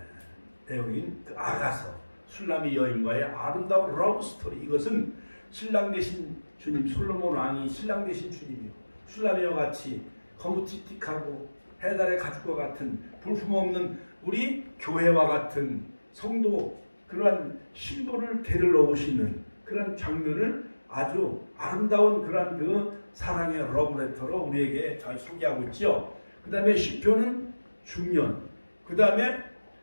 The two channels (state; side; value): inverted; both; correlation -1.00